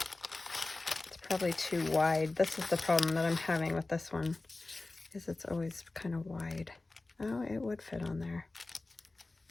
It's probably too wide. This is the problem that I'm having with this one, is it's always kind of wide. Oh, it would fit on there.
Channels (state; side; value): quieter; right; 3.2 dB